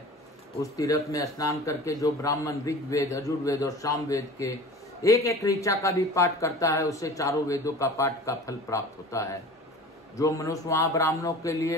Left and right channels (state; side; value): normal; both; correlation 0.40